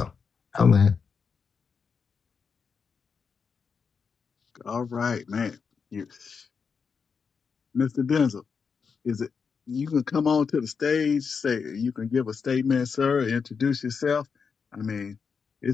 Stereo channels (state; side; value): quieter; right; 5.8 dB